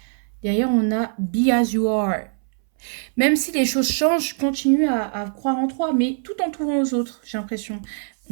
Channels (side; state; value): left; silent; 64 dB below the other